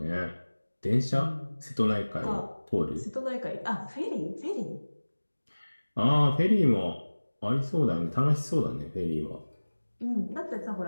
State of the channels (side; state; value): both; inverted; correlation -1.00